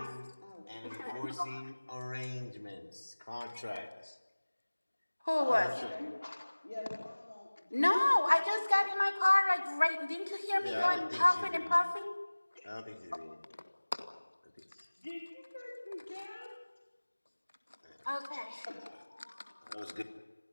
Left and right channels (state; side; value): inverted; both; correlation -1.00